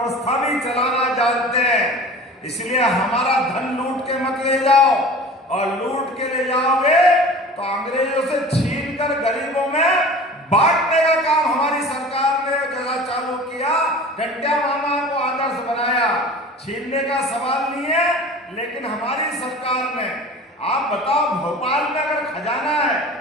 भी चलाना जानते हैं। इसलिए हमारा धन लूट के मत ले जाओ, और लूट के ले जाओगे तो अंग्रेजों से छीन कर गरीबों में बांटने का काम हमारी सरकार ने जरा चालू किया। टंटिया मामा को आदर्श बनाया, छीनने का सवाल नहीं है, लेकिन हमारी सरकार ने, आप बताओ, भोपाल में अगर खजाना है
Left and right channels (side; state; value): both; normal; correlation 0.40